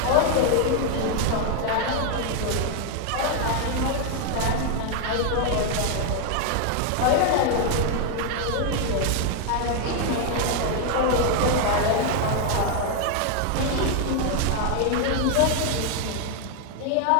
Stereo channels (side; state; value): both; different; correlation 0.00